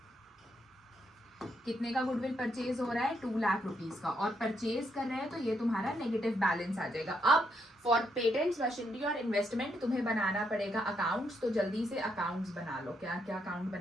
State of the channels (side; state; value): both; normal; correlation 0.77